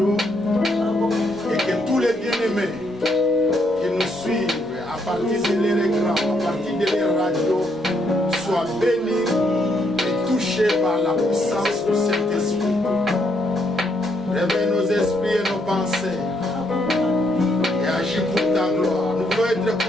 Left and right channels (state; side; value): normal; both; correlation 0.74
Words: et que tous les bien-aimés qui nous suivent à partir de leur écran, à partir de leur radio, soient bénis et touchés par la puissance du Saint-Esprit. Réveille nos esprits et nos pensées et agis pour ta gloire. Nous voulons être